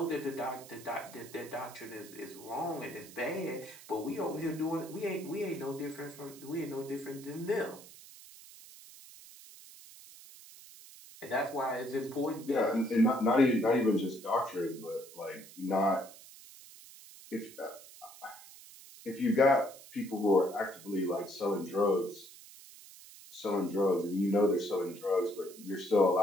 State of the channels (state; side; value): noise; right; hiss, 18 dB below the sound